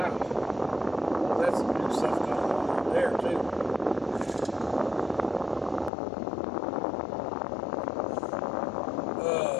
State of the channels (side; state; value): right; drops out; at 5.9 s